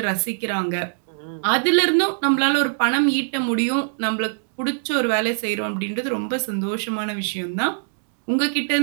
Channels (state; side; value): silent; left; digital silence